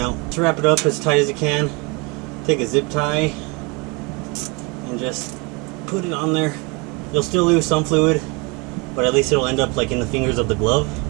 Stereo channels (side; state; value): left; quieter; 28.4 dB